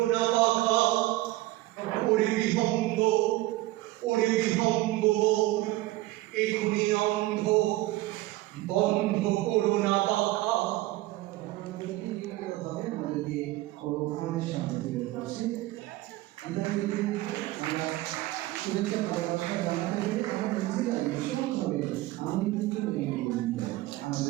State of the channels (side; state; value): left; quieter; 17.9 dB